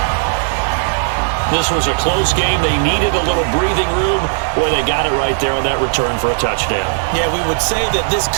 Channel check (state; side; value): silent; left; 67 dB below the other